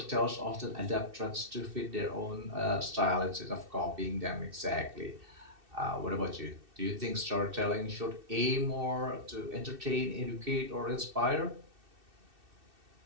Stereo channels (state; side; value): late; left; 2.6 ms